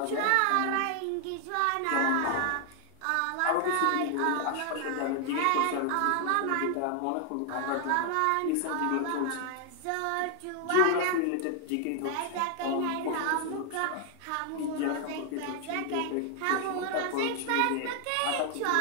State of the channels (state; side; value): different; both; correlation 0.00